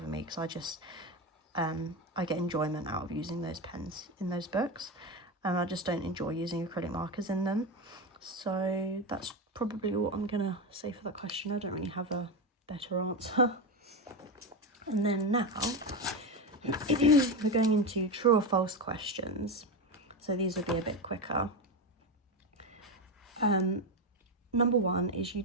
me, because I just I get enjoyment out of using those pens in those books, and I just don't enjoy using acrylic markers in them. So that's probably what I'm gonna say for that question. I don't really have a better answer. And then now we're going into true or false questions, so these will be a bit quicker. Number 1 is, you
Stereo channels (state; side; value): normal; both; correlation 0.16